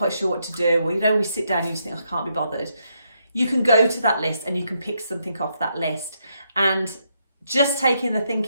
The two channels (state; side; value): inverted; both; correlation -0.78